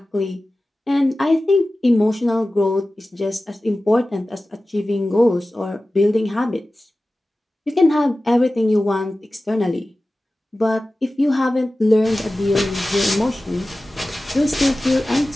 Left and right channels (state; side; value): normal; both; correlation 0.96